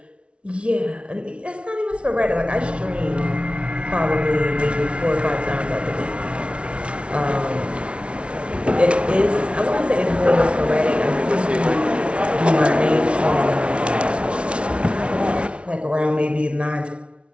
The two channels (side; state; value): left; late; 0.060 ms